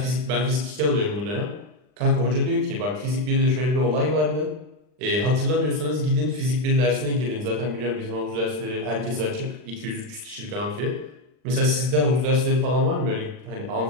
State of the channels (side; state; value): left; late; 39 ms